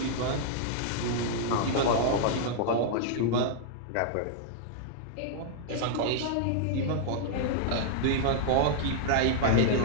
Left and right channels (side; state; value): both; different; correlation -0.01